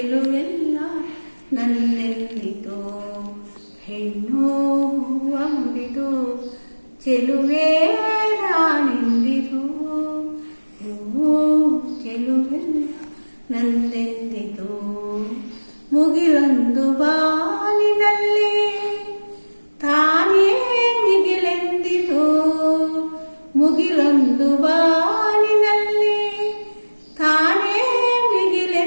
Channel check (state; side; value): inverted; both; correlation -1.00